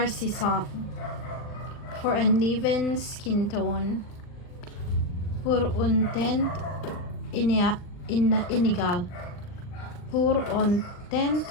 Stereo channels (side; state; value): right; late; 39 ms